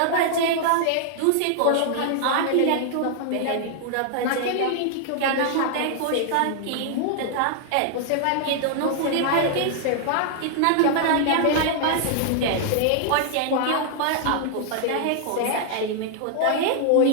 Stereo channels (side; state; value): both; different; correlation 0.00